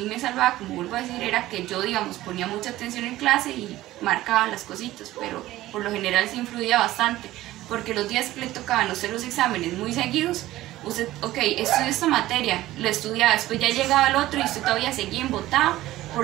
me salvaba, como vuelvo a decir, era que yo, digamos, ponía mucha atención en clase y marcaba las cositas, pero por lo general sí influía bastante, porque los días que le tocaban hacer los exámenes muy seguidos, usted, ok, estudió esta materia, lo estudiaba, después ya llegaba el otro y usted todavía seguía embotado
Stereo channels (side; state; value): left; quieter; 15.9 dB